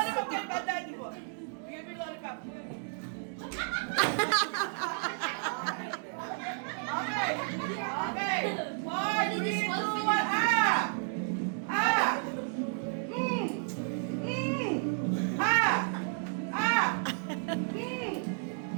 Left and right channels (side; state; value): left; silent; 56 dB below the other